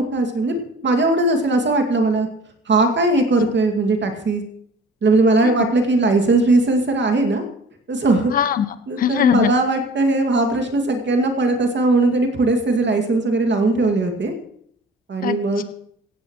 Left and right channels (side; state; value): both; normal; correlation 0.46